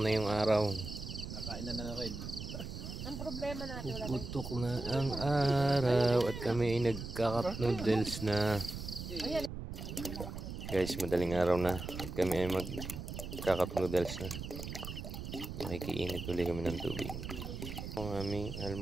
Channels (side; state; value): right; noise; rumble, 7 dB below the sound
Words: na yung araw. Nakain na rin. Ang problema natin wala. Puputok na ang araw at kami ay nagka-cup noodles na. Guys, madaling araw na at kami ay magka-cup noodles na. Makikiinit ulit kami ng tubig. Ang aming